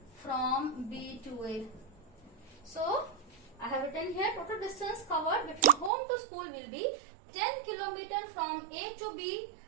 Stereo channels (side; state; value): left; drops out; at 5.9 s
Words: from B to A. So I have written here total distance covered between home to school will be 10 kilometer from A to B